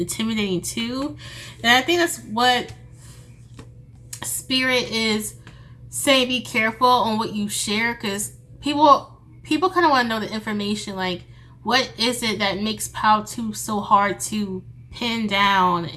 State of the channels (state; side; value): identical; both; correlation 1.00